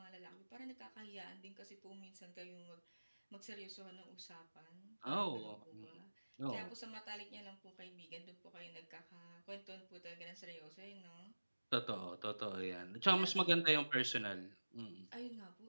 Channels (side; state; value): both; inverted; correlation -1.00